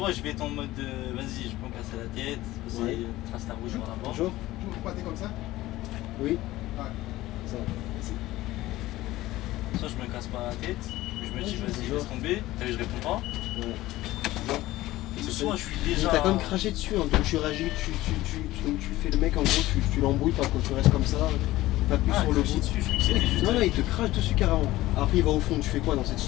je vais être en mode vas-y, je peux me casser la tête, c'est Ouais. trace la rouge par la porte. Bonjour. Comme ça. Oui. Ouais. Ça. Soit je me casse pas la tête, je me dis vas-y, bonjour. laisse tomber, t'as vu, je réponds pas. Ouais. Ou soit je suis Mais déjà. t'as quand même craché dessus, hein, donc tu réagis, donc tu fais le mec en gros, tu l'embrouilles pas quand tu restes comme ça, pas plus Ah, sur le cracher bout. dessus, je crois que c'était juste. Non, non, il te crache dessus carrément. Après, il va au fond, tu fais quoi dans cette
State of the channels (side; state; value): right; quieter; 16.9 dB